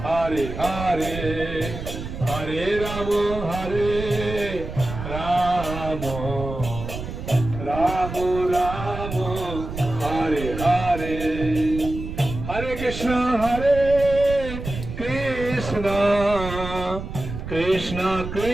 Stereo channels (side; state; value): right; noise; rumble, 8 dB below the sound